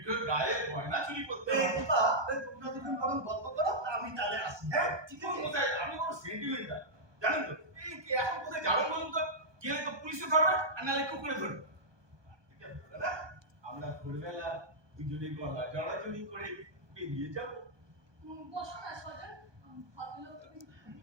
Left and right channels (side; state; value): left; late; 1.2 ms